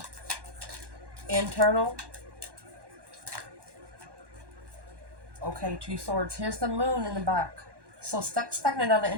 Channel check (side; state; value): left; late; 1.1 ms